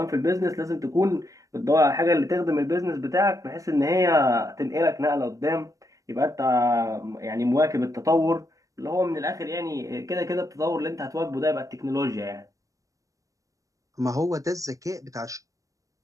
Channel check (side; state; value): left; late; 0.16 ms